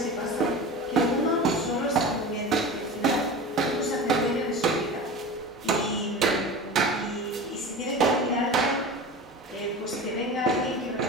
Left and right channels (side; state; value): both; normal; correlation 0.32